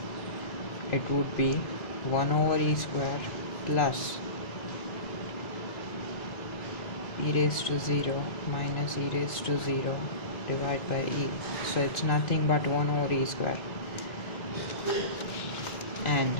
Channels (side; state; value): right; late; 2.5 ms